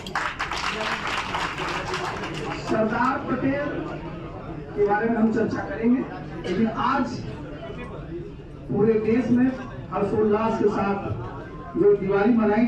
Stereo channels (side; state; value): both; identical; correlation 1.00